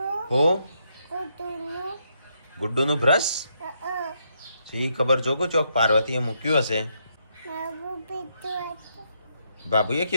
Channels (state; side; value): inverted; both; correlation -0.77